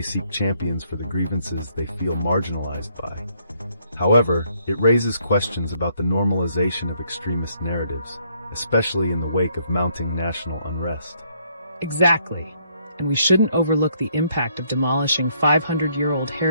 seek champions for the grievances they feel marginalized by. However, it raises questions about the normalization of extremist narratives, especially in the wake of mounting national unrest. Exactly. And we shouldn't overlook the impact of demolishing 500-year-old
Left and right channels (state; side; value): inverted; both; correlation -0.70